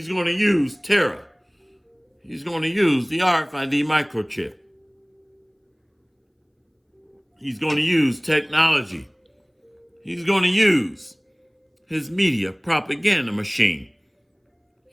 going to use terror. He's going to use the RFID microchip. He's going to use technology. He's going to use his media propaganda machine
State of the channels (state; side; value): identical; both; correlation 1.00